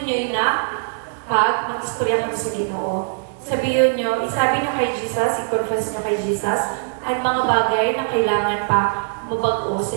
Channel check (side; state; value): left; silent; digital silence